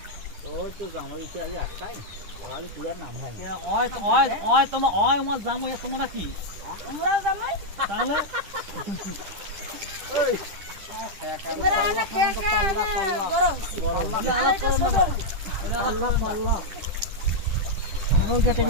ওই তো জামাই এসে আজ একটাই ওই পুরা নাম হয় ওই ওই ওই তোমার ওই আমার জামাই তোমরা কি আমরাও জামাই তাহলে ওই তোমরা না খেয়ে খেয়ে বড় হইছি আরে এটা ছোট আল্লাহ আল্লাহ ওই কেটে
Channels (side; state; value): left; late; 10 ms